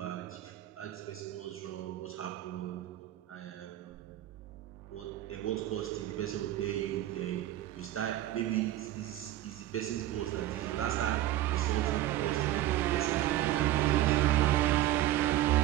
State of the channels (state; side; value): quieter; left; 14.1 dB